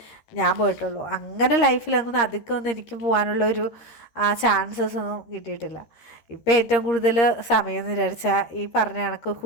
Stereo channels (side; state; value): right; late; 13 ms